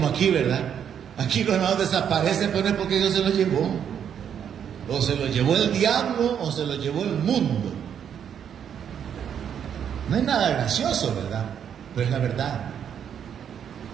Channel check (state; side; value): quieter; left; 8.5 dB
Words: aquí, ¿verdad? Aquí los hermanos desaparecen, pero no es porque Dios se los llevó. O se los llevó el diablo, o se los llevó el mundo. No hay nada gracioso, ¿verdad? Pero es la verdad.